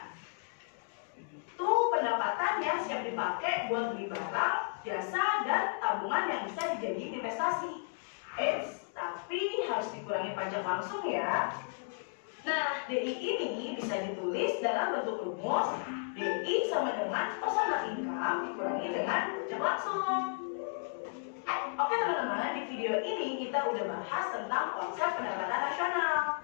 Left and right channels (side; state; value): right; silent; digital silence